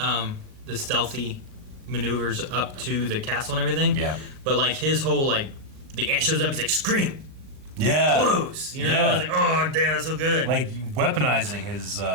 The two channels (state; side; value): late; left; 39 ms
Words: the stealthy maneuvers up to the castle and everything. Yeah. But like his whole like the ant shows up, it's like scream, Yeah. close. You know, Yeah. I was like, oh damn, that's so good. Like, weaponizing his